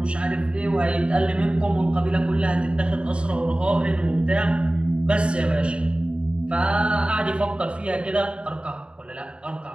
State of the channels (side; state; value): left; late; 0.056 ms